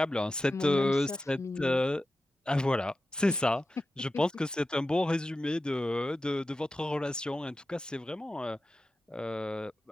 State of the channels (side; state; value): both; normal; correlation 0.93